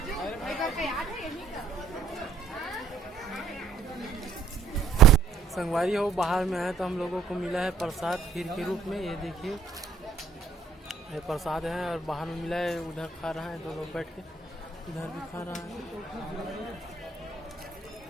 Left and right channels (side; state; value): left; quieter; 4.9 dB